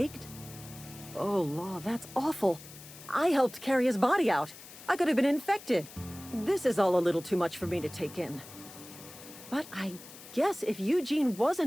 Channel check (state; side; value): noise; left; hiss, 17 dB below the sound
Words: Oh, Law, that's awful. I helped carry his body out. I could have been infected. This is all a little too much for me to take in. But I guess if Eugene